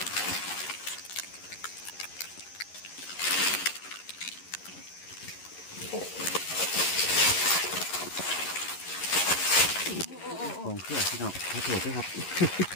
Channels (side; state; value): right; late; 11 ms